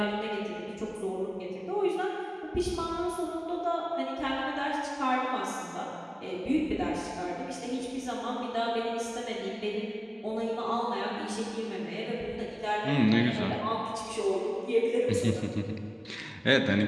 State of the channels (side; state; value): both; identical; correlation 1.00